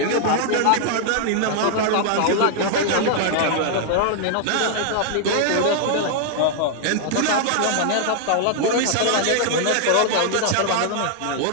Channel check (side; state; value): both; different; correlation 0.00